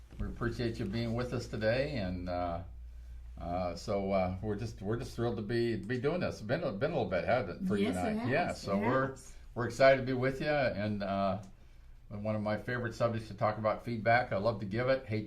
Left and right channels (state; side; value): identical; both; correlation 1.00